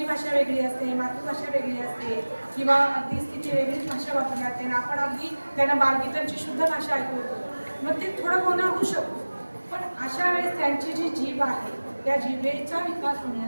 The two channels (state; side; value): inverted; both; correlation -1.00